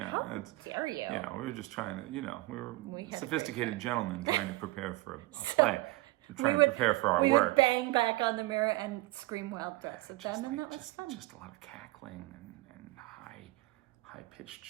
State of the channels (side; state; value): left; quieter; 20.1 dB